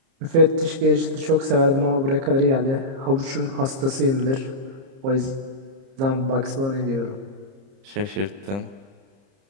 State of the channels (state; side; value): late; left; 30 ms